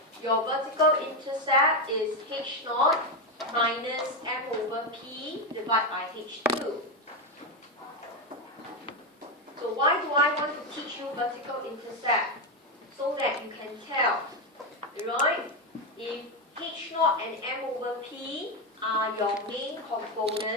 your vertical intercept is H0 minus M over P divided by H2. So why do I want to teach you vertical intercept? So that you can tell, right? If H0 and M over P are your main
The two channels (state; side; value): normal; both; correlation 0.09